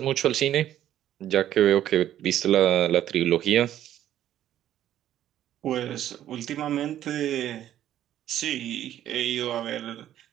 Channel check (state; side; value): quieter; left; 11.7 dB